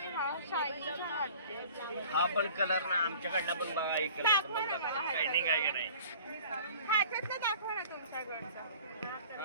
हा पण कलर ना आमच्याकडनं पण बघा एक दाखवा ना मला. शायनिंग आहे की नाही. ह्याच्यातलं दाखवा ना तुमच्याकडचा.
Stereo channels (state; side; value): inverted; both; correlation -0.47